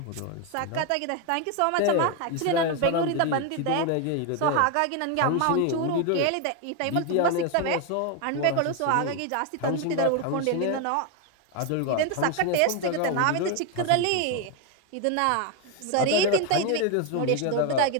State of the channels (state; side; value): different; both; correlation 0.01